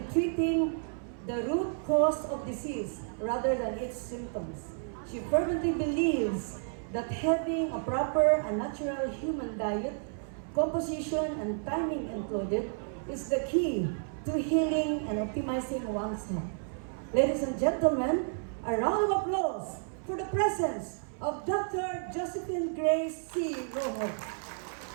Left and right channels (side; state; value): left; silent; 57 dB below the other